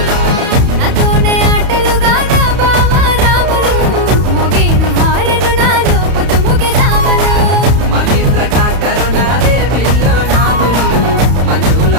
నాతోనే ఆటలుగానా బావ రాములు మోగేను హారను నాలో పుట్టుముఖ జాములు మహేంద్ర ట్రాక్టరు నాదే పిల్లో నాదులు మంజుల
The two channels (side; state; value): left; late; 31 ms